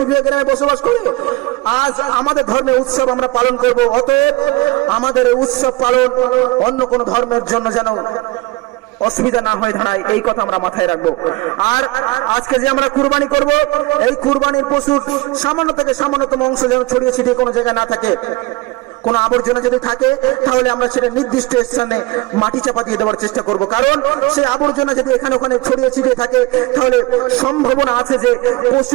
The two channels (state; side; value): quieter; left; 21.5 dB